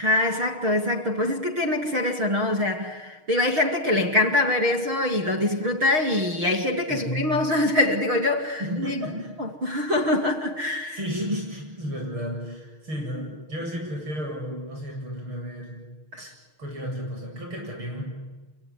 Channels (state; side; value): late; left; 6.4 ms